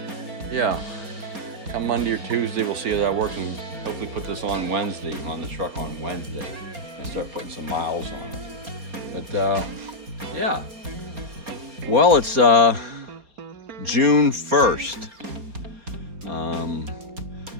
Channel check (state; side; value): late; left; 4.3 ms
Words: yeah. Come Monday or Tuesday, we'll see how that works, and hopefully put this on Wednesday, on the truck on Wednesday, and start putting some miles on it. But yeah. Well, it's June 1st.